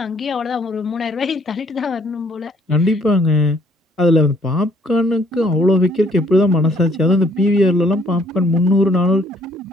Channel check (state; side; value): normal; both; correlation 0.64